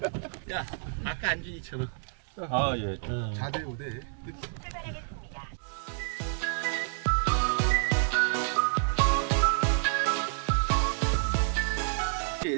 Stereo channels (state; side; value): silent; left; digital silence